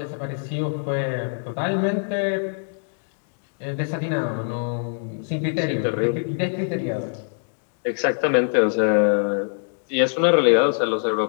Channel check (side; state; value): right; silent; digital silence